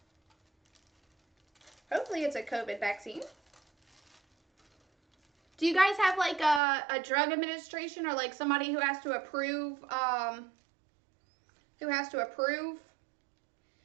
Hopefully it's a COVID vaccine. Do you guys have like a drug administration or like somebody who has to approve,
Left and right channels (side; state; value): left; drops out; at 6.6 s